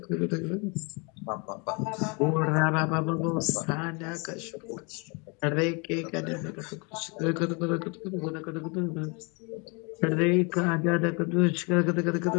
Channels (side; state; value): right; quieter; 31.9 dB